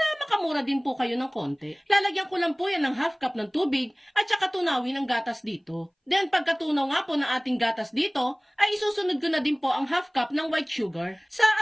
makamura din po kayo ng konti. Lalagyan ko lang po yan ng half cup ng tubig at saka tunawin ng gatas dito. Then pagkatunaw nga po ng ating gatas dito, ay isusunod ko na din po ang half cup ng white sugar. Sa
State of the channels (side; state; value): both; identical; correlation 1.00